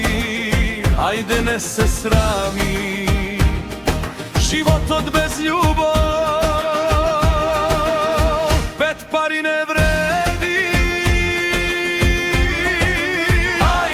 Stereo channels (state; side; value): identical; both; correlation 1.00